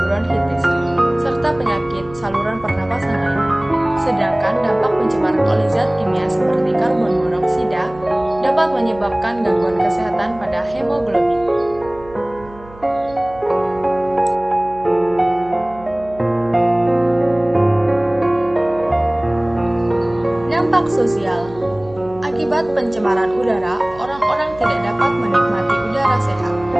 serta penyakit saluran pernapasan lainnya. Sedangkan dampak pencemaran oleh zat kimia seperti karbon monoksida dapat menyebabkan gangguan kesehatan pada hemoglobin. Dampak sosial. Akibat pencemaran udara, orang-orang tidak dapat menikmati udara sehat.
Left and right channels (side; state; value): right; noise; hum, 20 dB below the sound